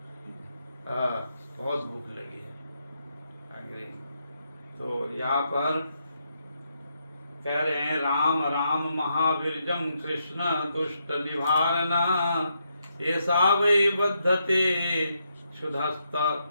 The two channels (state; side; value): inverted; both; correlation -0.80